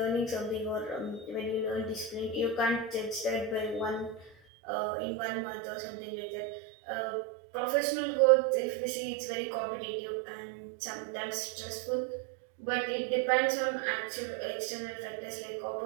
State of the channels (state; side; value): drops out; left; at 4.3 s